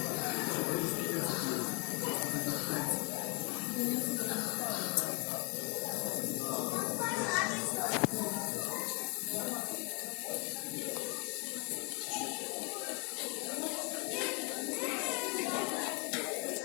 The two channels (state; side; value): quieter; right; 32.7 dB